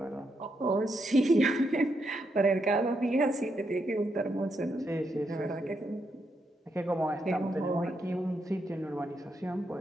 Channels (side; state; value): both; normal; correlation 0.80